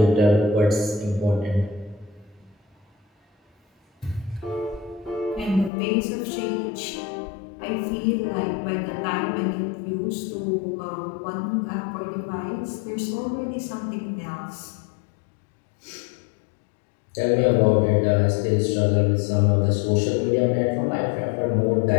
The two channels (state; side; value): drops out; right; at 5.7 s